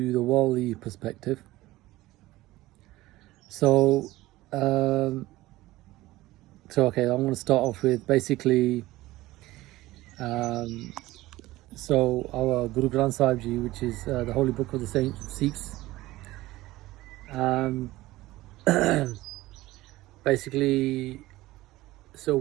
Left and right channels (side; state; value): left; quieter; 17.7 dB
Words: the worldly perspective. So, okay, I'm going to start off with basically. So our Guru Granth Sahib Ji, which is the holy book of the Sikhs, basically, so